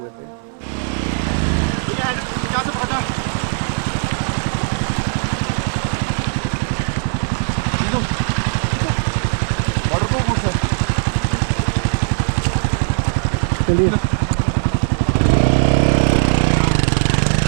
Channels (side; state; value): left; silent; 67 dB below the other